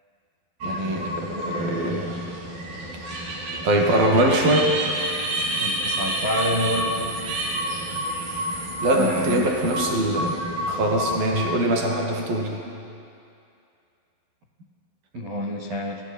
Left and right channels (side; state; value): left; late; 12 ms